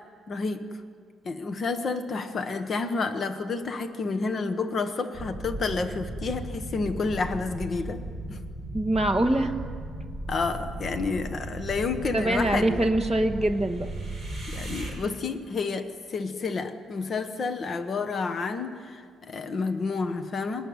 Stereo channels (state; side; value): normal; both; correlation 0.80